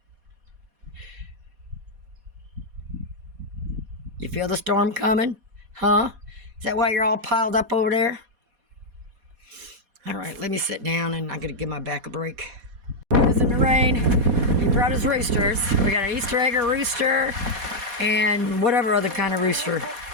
You feel the storm coming? Huh? Is that why you're all piled up over there? All right, let me sit down, and I'm going to give my back a break. It's in the rain. He brought his roosters. We got an Easter egg rooster and whatever other kind of rooster.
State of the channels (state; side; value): late; left; 4.2 ms